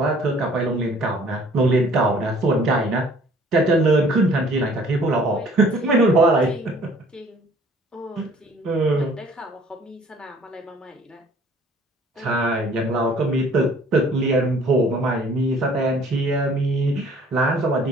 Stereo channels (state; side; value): normal; both; correlation 0.54